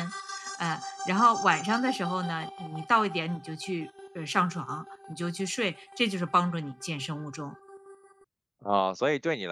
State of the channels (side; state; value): both; identical; correlation 1.00